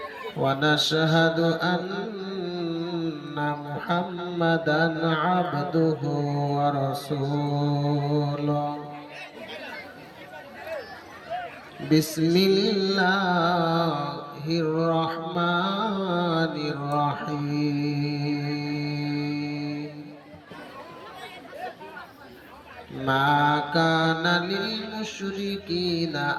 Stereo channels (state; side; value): identical; both; correlation 1.00